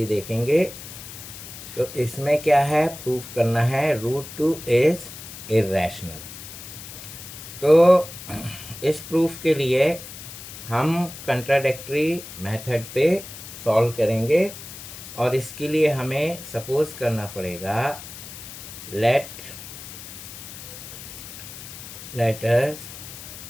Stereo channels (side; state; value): left; noise; hiss, 13 dB below the sound